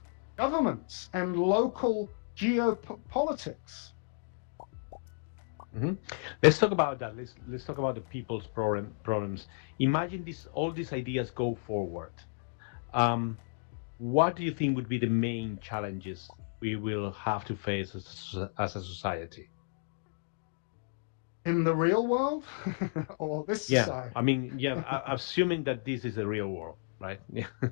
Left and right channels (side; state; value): right; silent; digital silence